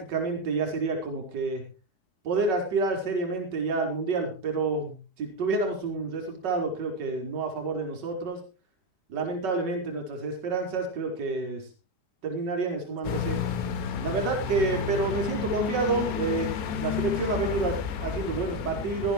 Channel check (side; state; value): left; late; 4.5 ms